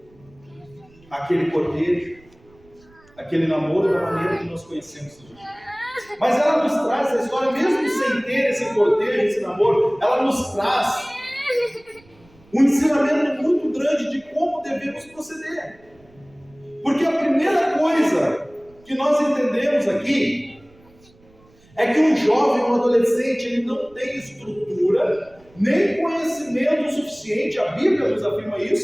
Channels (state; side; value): noise; right; rumble, 29 dB below the sound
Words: aquele cortejo, aquele namoro da maneira que nós conhecemos hoje. Mas ela nos traz a história, mesmo sem ter esse cortejo, esse namoro, ela nos traz um ensinamento muito grande de como devemos proceder. Porque a primeira coisa que nós entendemos aqui é que um jovem, um adolescente, ele não tem estrutura, nem conhecimento suficiente, a Bíblia nos afirma